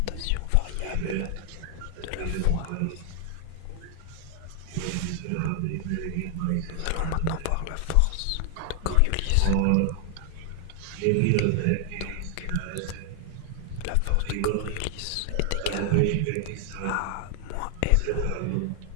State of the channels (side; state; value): both; different; correlation 0.00